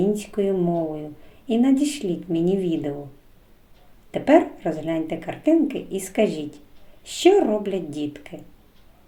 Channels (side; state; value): both; identical; correlation 1.00